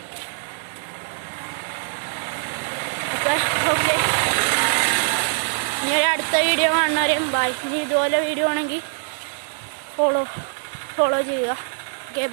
അപ്പം മക്കളെ. ഓക്കെ, ഇനി ഒരു അടുത്ത വീഡിയോ കാണുന്നവരെയും ബൈ. ഇനി ഇതുപോലെ വീഡിയോ ആണെങ്കിൽ ഫോളോ ചെയ്യുക. Okay,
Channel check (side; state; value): left; silent; digital silence